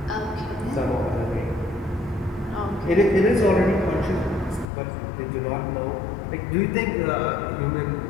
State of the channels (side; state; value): right; drops out; at 4.7 s